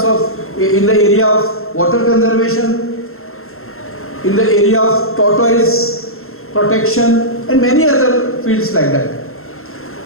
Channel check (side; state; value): right; late; 0.62 ms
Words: of, in the area of water conservation, in the area of tortoise protection and many other fields like that.